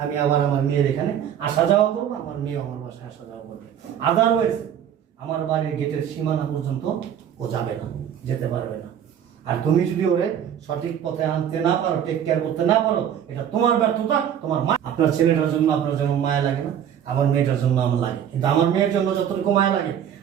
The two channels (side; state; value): left; quieter; 9.4 dB